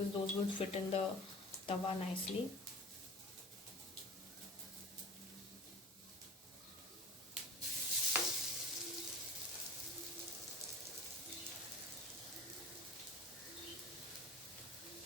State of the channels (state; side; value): normal; both; correlation 0.40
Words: those will fit in the tawa nicely.